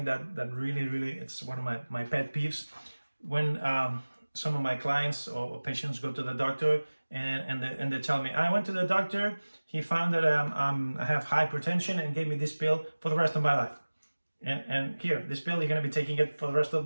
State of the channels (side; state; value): both; inverted; correlation -1.00